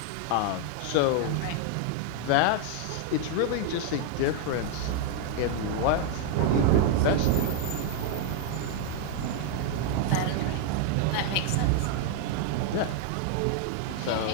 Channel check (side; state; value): both; different; correlation 0.00